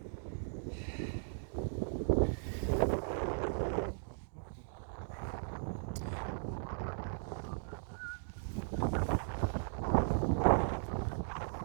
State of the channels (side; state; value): left; silent; digital silence